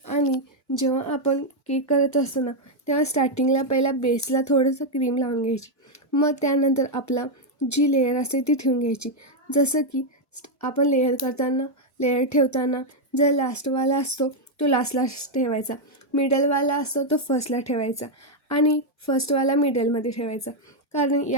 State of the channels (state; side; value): normal; both; correlation 0.01